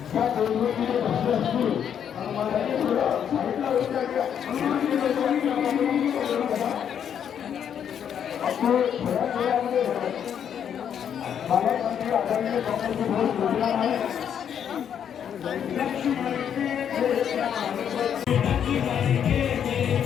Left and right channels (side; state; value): right; quieter; 8.6 dB